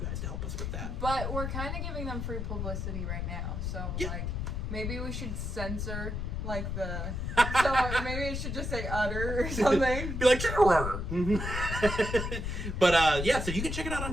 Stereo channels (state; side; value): noise; left; rumble, 3 dB below the sound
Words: to help us with that. But we're kind of giving them free publicity right now. So, maybe we should censor, so maybe it should just say utter or something. Be like, But, so you can check it out on